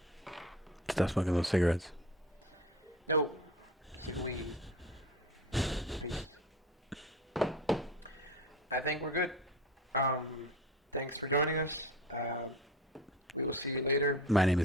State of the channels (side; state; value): both; normal; correlation 0.33